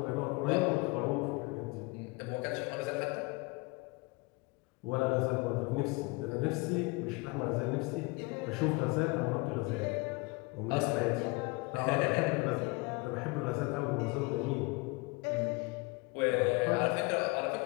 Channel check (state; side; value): quieter; right; 26.1 dB